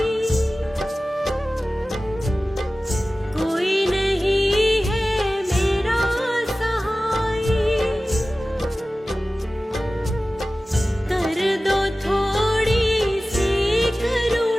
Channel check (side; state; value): both; normal; correlation 0.96